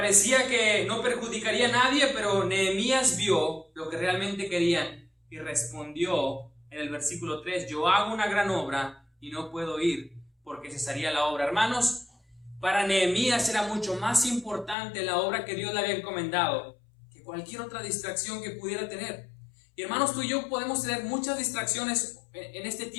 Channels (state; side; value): drops out; right; at 14.8 s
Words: que no perjudicaría a nadie, pero Nehemías vio lo que realmente querían y respondió en el versículo 3: yo hago una gran obra y no puedo ir, porque cesaría la obra. Hermanos, para Nehemías era mucho más importante la obra que Dios le había encomendado que cualquier otra distracción que pudiera tener. Y hermanos, tú y yo podemos tener muchas distracciones en este